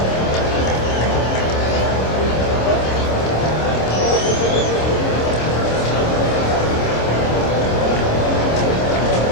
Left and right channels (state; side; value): late; right; 26 ms